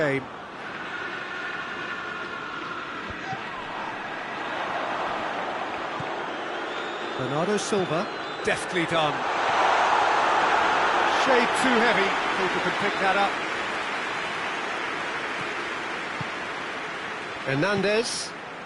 Bernardo Silva. Deftly done. Shade too heavy. Keeper can pick that up. Hernandez.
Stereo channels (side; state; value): both; identical; correlation 1.00